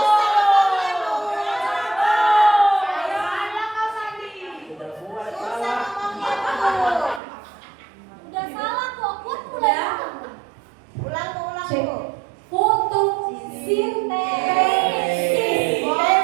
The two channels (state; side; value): drops out; left; at 7.2 s